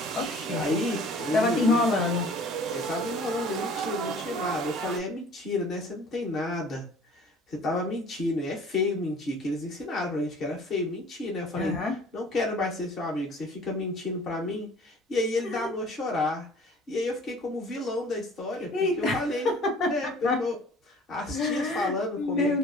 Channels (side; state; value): both; normal; correlation 0.49